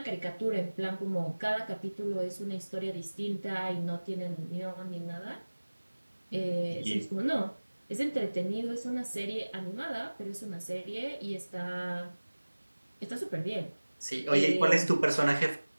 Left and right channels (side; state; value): both; inverted; correlation -1.00